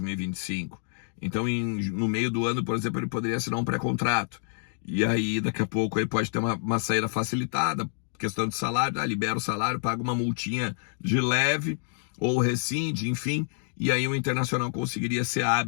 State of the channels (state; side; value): silent; right; 59 dB below the other